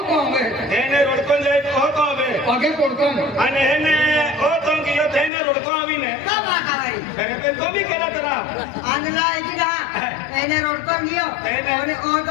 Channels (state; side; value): drops out; right; at 5.3 s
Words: तो हमें हेने रोडकोन जाय तो तो आवे आगे पड़कन आणि हेने ओ तो कियो हेने रोडको आवीने का बाका भाई अरे पे तो भी केला तरा आंधला एकी का एने रोडको गियो एने- ओने ओ